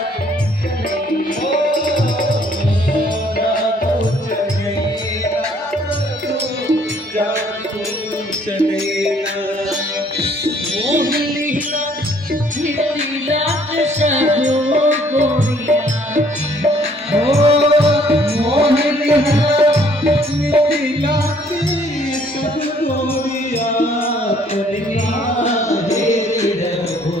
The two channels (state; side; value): normal; both; correlation 0.62